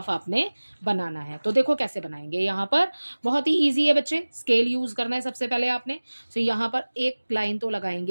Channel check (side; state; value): both; inverted; correlation -1.00